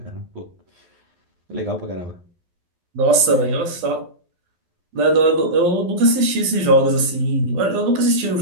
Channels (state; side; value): late; left; 11 ms